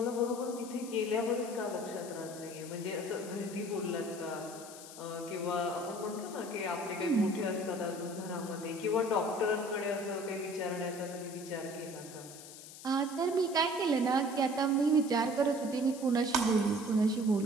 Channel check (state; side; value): noise; left; hiss, 15 dB below the sound